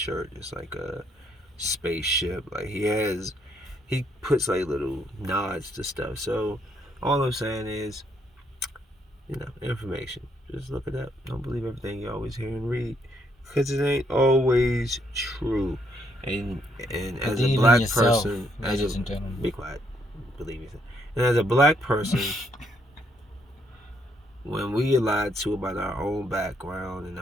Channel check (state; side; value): normal; both; correlation 0.72